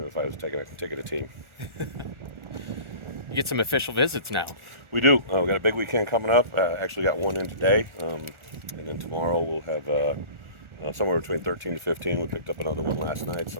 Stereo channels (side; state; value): left; late; 1.4 ms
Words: if I was taking a team. You get some official visits now. We do. We got a big weekend coming up. Actually got one in today, and then tomorrow we'll have somewhere between 13 to 15. We picked up another one last night.